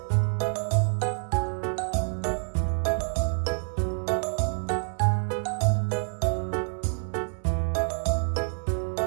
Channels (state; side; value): silent; left; 60 dB below the other